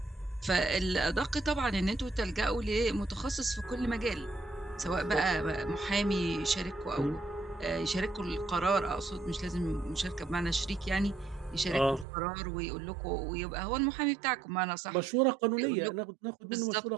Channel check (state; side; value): drops out; left; at 12.1 s